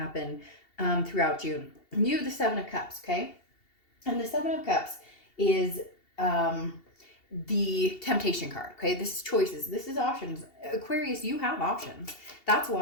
throughout June. You have the Seven of Cups, okay? And the Seven of Cups is the temptation card, okay? This is choices. This is options. Aquarius, you have options. That's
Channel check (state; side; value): late; right; 2.7 ms